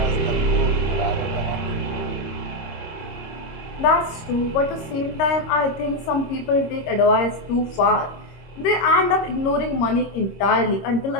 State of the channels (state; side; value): late; right; 26 ms